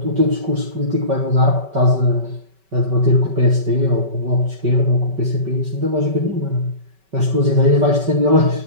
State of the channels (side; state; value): left; late; 5.2 ms